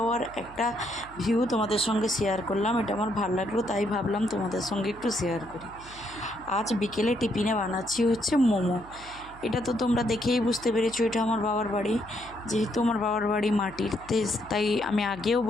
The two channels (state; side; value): noise; right; hum, 20 dB below the sound